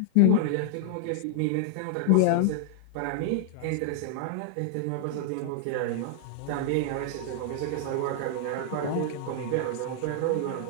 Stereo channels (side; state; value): both; different; correlation -0.01